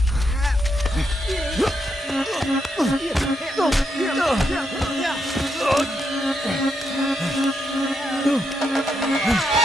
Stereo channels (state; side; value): normal; both; correlation 0.81